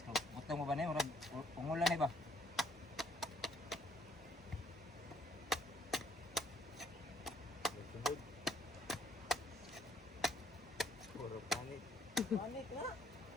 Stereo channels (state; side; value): normal; both; correlation 0.65